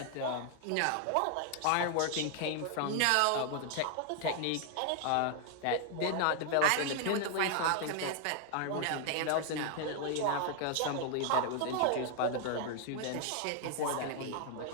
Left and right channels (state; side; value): different; both; correlation 0.00